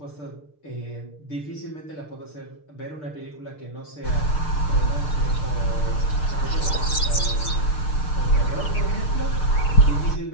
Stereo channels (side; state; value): right; late; 6.7 ms